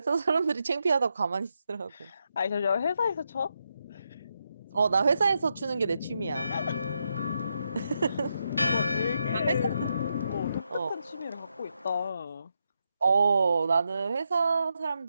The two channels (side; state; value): both; inverted; correlation -0.83